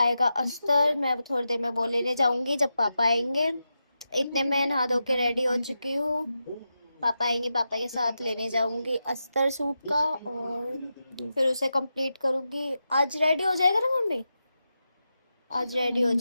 अस्तर। मैं अब थोड़ी देर में वो लेने जाऊंगी जब पापा आएंगे। इतने में नहा धो के रेडी हो चुकी हूँ। पापा आएंगे, पापा के साथ लेने जाऊंगी अस्तर सूट का। और फिर उसे कंप्लीट करूंगी। आज रेडी हो जाएगा ना मम्मी? आज रेडी हो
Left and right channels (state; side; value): inverted; both; correlation -0.90